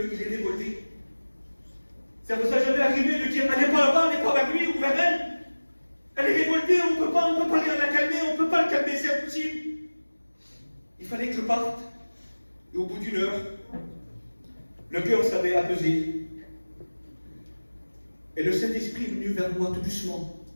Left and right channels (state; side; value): inverted; both; correlation -1.00